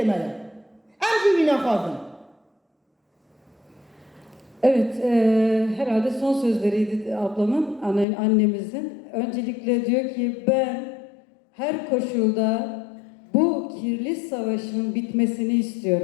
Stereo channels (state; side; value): drops out; right; at 8.1 s